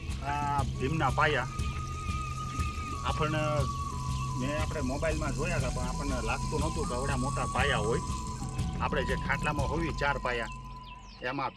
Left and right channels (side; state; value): both; identical; correlation 1.00